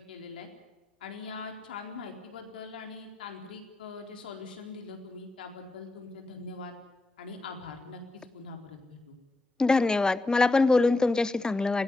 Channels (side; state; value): right; quieter; 3.0 dB